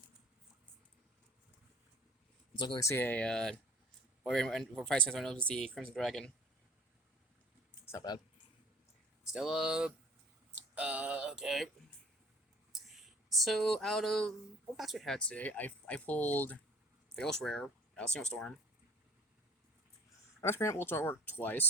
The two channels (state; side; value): normal; both; correlation 0.48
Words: Let's look, see a, for 5 cents, I know it's the Crimson Dragon. It's not bad. Still, okay. So, out of what packs we had today, I pulled the Ghost Rare, Single Storm. I was Grant Ultra Artwork